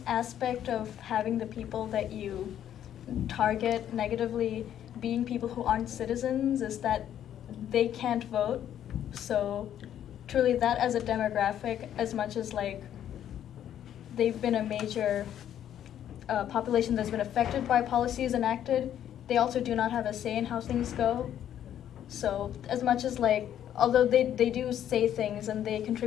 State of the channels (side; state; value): right; quieter; 10.5 dB